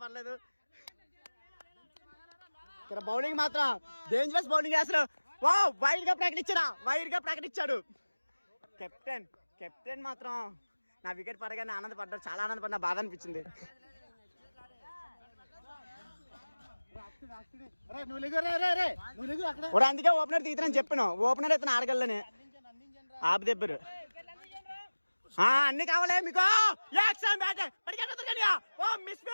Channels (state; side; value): inverted; both; correlation -1.00